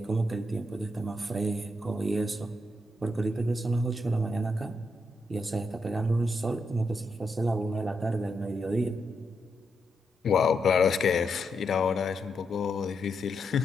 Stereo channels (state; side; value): normal; both; correlation 0.82